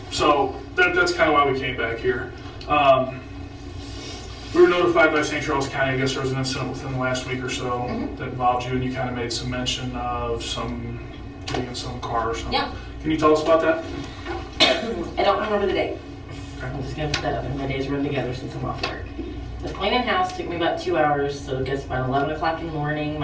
So, that's kind of why we came back here. We were notified by St. Charles County, I guess there was an incident within the last week or so that involved you, and you kind of made some mention of getting in some car or something. Yeah. Can you tell us about that? I don't remember the date. Okay. I'm just going to put that up, and my days run together since I'm off work. The cleaning house took me about 2 hours, so it gets about 11 o'clock in the morning.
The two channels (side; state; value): both; identical; correlation 1.00